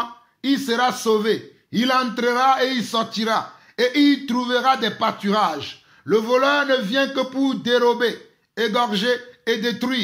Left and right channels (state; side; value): identical; both; correlation 1.00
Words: il sera sauvé. Il entrera et il sortira. Et il trouvera des pâturages. Le voleur ne vient que pour dérober, égorger et